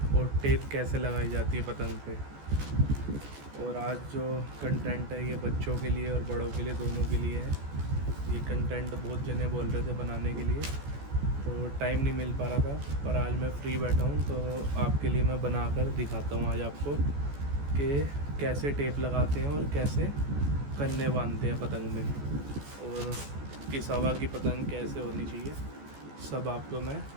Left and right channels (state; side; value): late; left; 14 ms